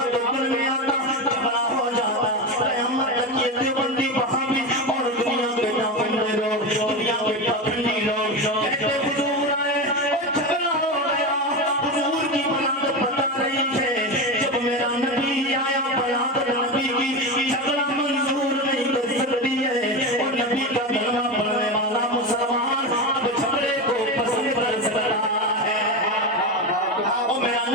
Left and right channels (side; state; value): both; normal; correlation 0.19